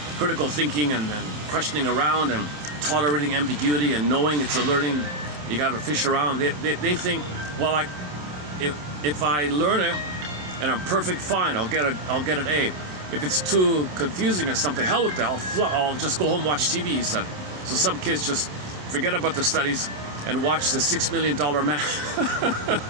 critical thinking and questioning around and tolerating ambiguity and knowing it's a learning, you got to fish around. They think, well, like, if I learn it and I'm perfect, fine, I'll get an A. If it's too confusing or something, hell with that, I'll just go home and watch TV, he said. So some kids just forget about their studies and watch the $6 Million Man.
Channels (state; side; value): late; left; 27 ms